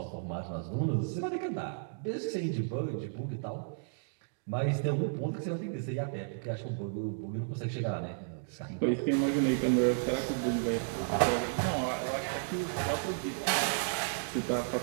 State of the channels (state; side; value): silent; left; digital silence